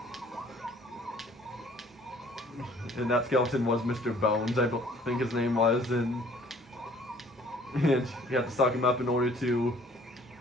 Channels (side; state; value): both; normal; correlation 0.56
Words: And that skeleton was Mr. Bones, I think his name was, and you had to stock him up in order to